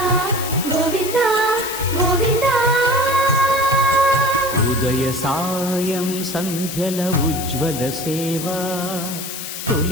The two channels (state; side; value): noise; left; hiss, 7 dB below the sound